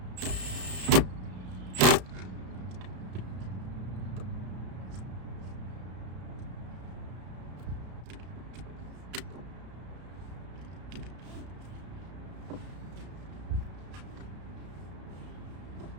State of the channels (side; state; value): left; late; 33 ms